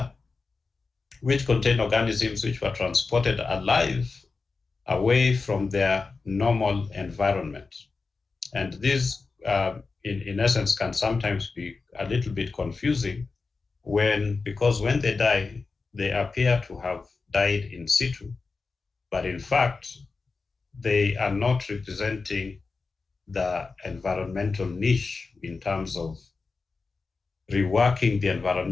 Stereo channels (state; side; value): quieter; right; 4.2 dB